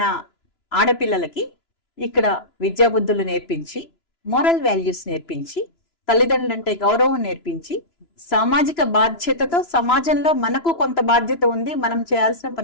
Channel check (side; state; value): right; late; 2.9 ms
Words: ఆడపిల్లలకి ఇక్కడ విద్యాబుద్ధులు నేర్పించి, మోరల్ వాల్యూస్ నేర్పించి, తల్లిదండ్రులంటే గౌరవం నేర్పించి, సామాజిక బాధ్యతతో సమాజంలో మనకు కొంత బాధ్యత ఉంది, మనం చేయాల్సిన